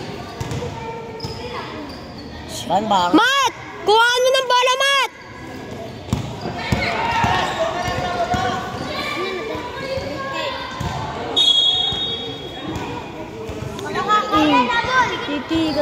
Bang. Mat! Kuhaan mo ng bola, Mat!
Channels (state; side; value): identical; both; correlation 1.00